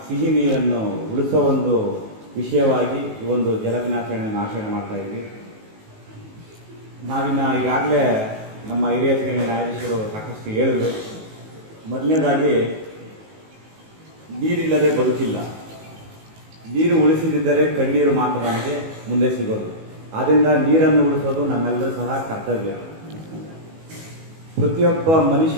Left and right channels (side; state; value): left; late; 19 ms